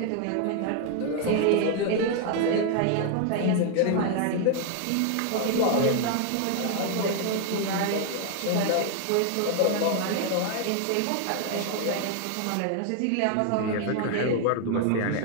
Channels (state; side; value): different; both; correlation 0.00